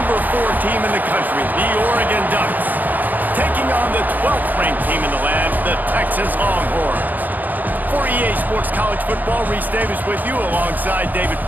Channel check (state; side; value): late; left; 0.084 ms